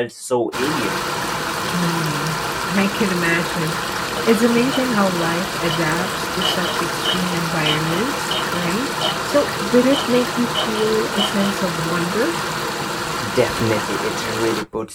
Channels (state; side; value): identical; both; correlation 1.00